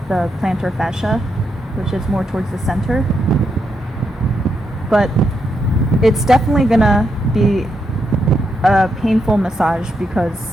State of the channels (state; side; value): normal; both; correlation 0.81